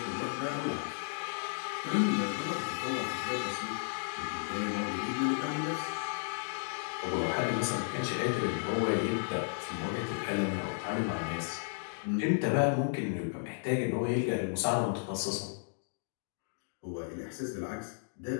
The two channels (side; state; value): right; silent; digital silence